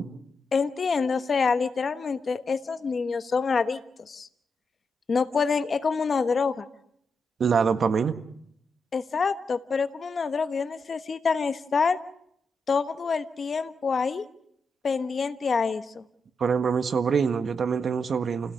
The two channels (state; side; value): normal; both; correlation 0.84